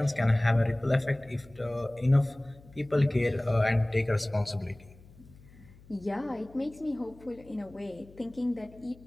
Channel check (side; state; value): left; noise; hum, 23 dB below the sound